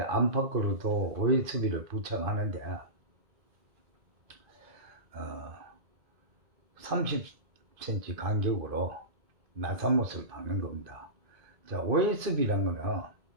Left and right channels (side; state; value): left; late; 2.5 ms